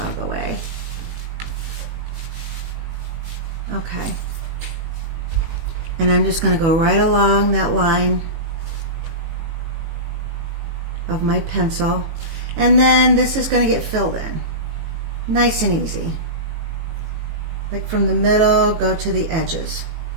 of the way. Okay. And I'm just going to go right along that line of my pencil. And then this is going to get filled in. Nice and easy. Like from the middle, go to the edges.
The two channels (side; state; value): left; late; 18 ms